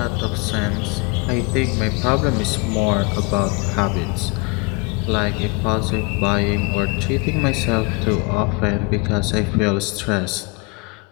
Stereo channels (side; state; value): right; quieter; 29.0 dB